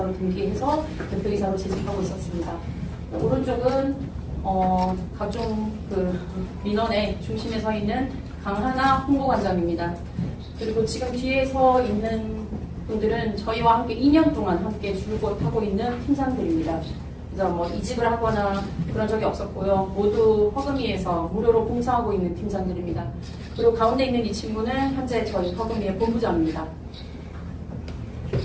등기해서 대표이사로 재직하고 있었습니다. 오른쪽은 각종 민원의 중심에 서 있는 강하나 홍보관장입니다. 그리고 지금 뒤에 서 있는 분들은 저희와 함께 2년 동안 함께 줄곧 하고 있는 팀장들입니다. 그래서 이직을 하거나 그런 적이 없었고요. 모두 허금이에서 무료로 봉사하고 있는 팀장들입니다. 그리고 가운데 있는 이 친구는 현재 저희 허금이의 본부장입니다.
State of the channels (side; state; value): both; identical; correlation 1.00